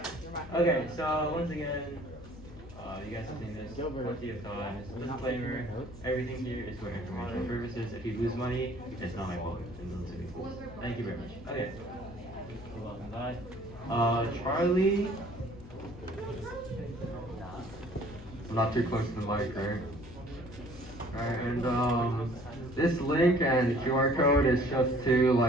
Okay. So once again, you guys have seen this plenty of times. Disclaimer: everything here is for informational purposes. If you lose money, it's not my fault. Thank you very much. Okay. Charlie. I'm not too close to the mic, right? Alright, and this link and QR code is just to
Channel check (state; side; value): noise; left; hum, 19 dB below the sound